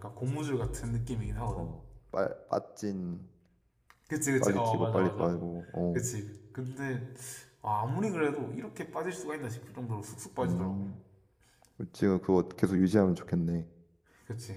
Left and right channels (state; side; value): identical; both; correlation 1.00